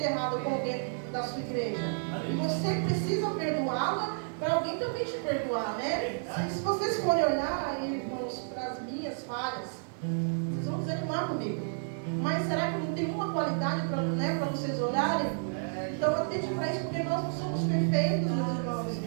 errado com alguém da sua igreja. E você precisa perdoá-la para alguém também te perdoar, né? Se vocês forem olhar, irmãos, para as minhas falhas, vocês vão desanimar comigo. Mas será que não tem uma qualidade para vocês olharem? Então atente para isso, porque nós não somos perfeitos, meus irmãos.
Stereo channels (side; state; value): left; silent; digital silence